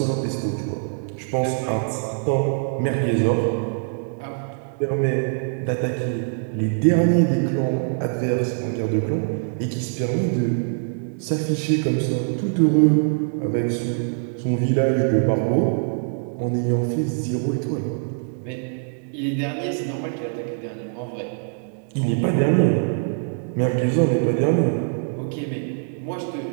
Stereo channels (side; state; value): left; silent; digital silence